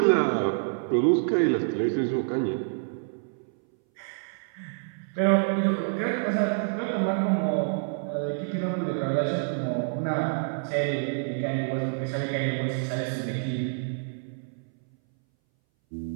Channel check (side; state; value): left; silent; 60 dB below the other